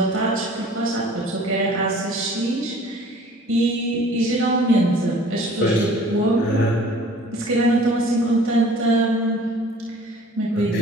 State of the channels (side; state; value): both; normal; correlation 0.50